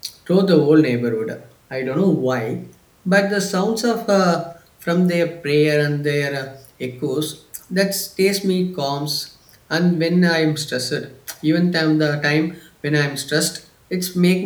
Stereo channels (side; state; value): both; identical; correlation 1.00